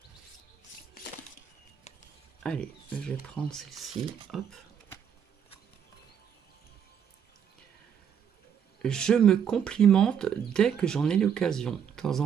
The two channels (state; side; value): quieter; left; 8.2 dB